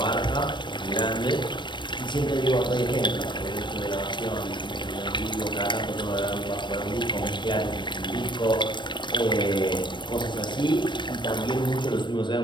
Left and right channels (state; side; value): late; right; 0.23 ms